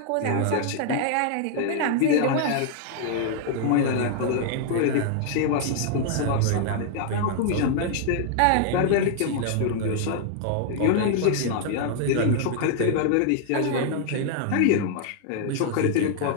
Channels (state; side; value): different; both; correlation 0.00